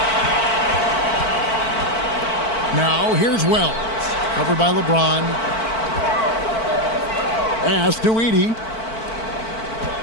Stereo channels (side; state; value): right; late; 4.5 ms